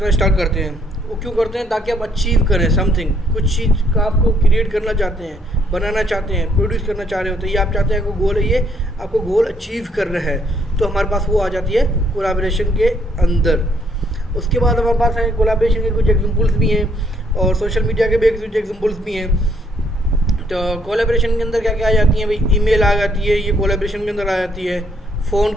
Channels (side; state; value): both; normal; correlation 0.69